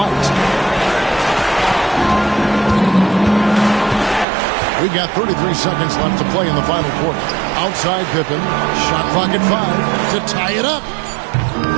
We've got 33 seconds left to play in the final quarter. Outside Pippen. Shot clock at 5 to tie it up.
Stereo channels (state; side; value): drops out; left; at 4.2 s